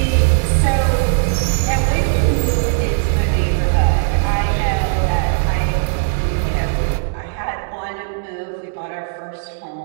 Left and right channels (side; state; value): left; silent; digital silence